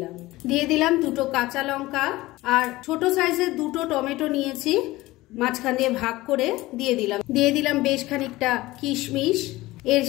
দিলাম 2 কাঁচা লঙ্কা আর ছোট সাইজের 2 টমেটো নিয়েছি, মাঝখান দিয়ে ভাগ করে দিয়ে দিলাম বেশ খানিকটা কিশমিশ। এর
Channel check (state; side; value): quieter; right; 18.7 dB